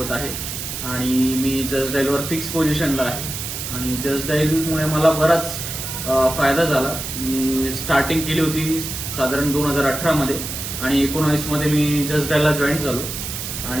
आहे आणि मी जजडाईलवर फिक्स पोझिशनला आहे. आणि जजडाईलमुळे मला बराच फायदा झाला. मी स्टार्टिंग केली होती साधारण 2018 मध्ये आणि 19 मध्ये मी जजडाईलला जॉईन झालो.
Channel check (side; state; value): right; noise; hiss, 6 dB below the sound